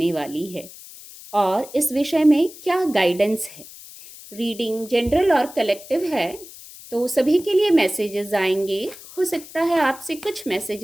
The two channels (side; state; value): left; noise; hiss, 17 dB below the sound